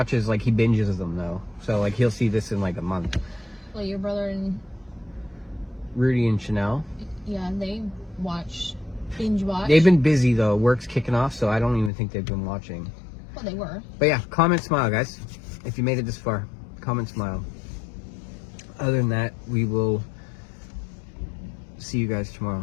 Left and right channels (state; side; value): drops out; right; at 11.9 s